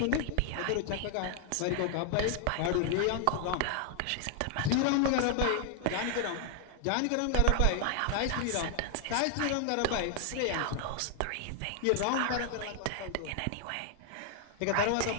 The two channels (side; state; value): both; different; correlation 0.00